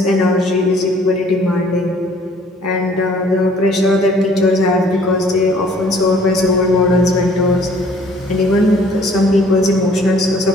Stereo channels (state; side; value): normal; both; correlation 0.57